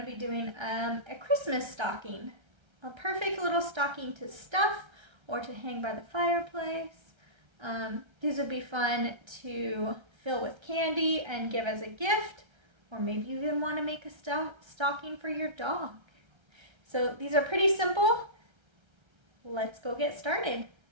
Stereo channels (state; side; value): late; left; 1.3 ms